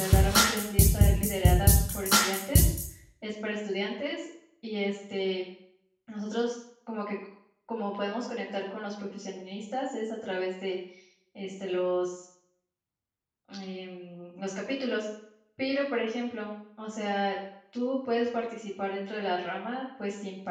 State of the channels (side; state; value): both; identical; correlation 1.00